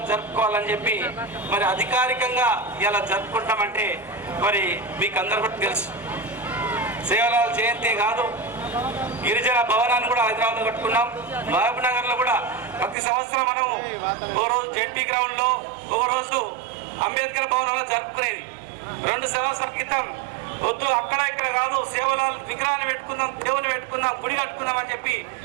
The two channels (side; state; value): left; drops out; at 13.0 s